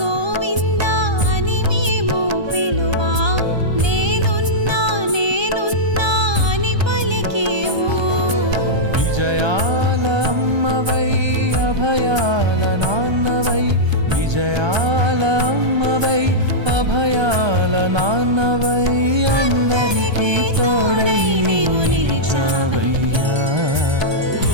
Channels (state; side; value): late; left; 1.3 ms